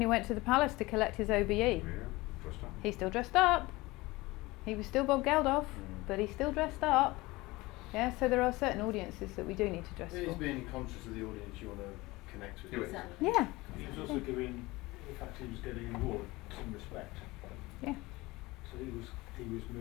he went to the palace to collect his OBE. Yeah, dressed up. He's still dressed up. He was still Bob Geldof, but he's still dressed up. Yeah, so there are certain audiences that we do need to dress He's for. being conscious of the audience you want to connect with. Exactly. Yeah. He was also giving, the fact he was getting an award, some respect. Yeah. So he was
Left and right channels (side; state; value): right; quieter; 21.1 dB